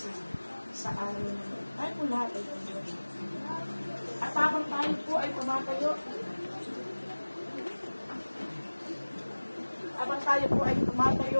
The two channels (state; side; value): inverted; both; correlation -1.00